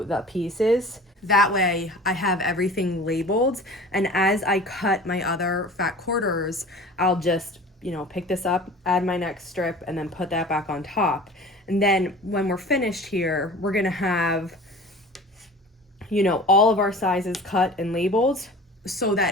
the pieces. That way I have everything labeled, and as I cut my other fat quarters, I'll just, you know, pick this up, add my next strip, and then put that back on top. And then when we're finished here, we're gonna have, you know, all of our sizes cut and labeled so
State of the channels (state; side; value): normal; both; correlation 0.41